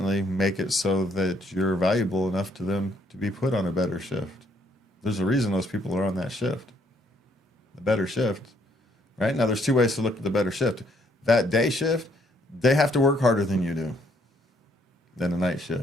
make it so that you're valuable enough to them to be put on a better shift. There's a reason those people are on that shift. The better shift, right? Now, there's 2 ways to look at the better shift. That day shift, they have to work harder than you do than the night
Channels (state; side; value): normal; both; correlation 0.68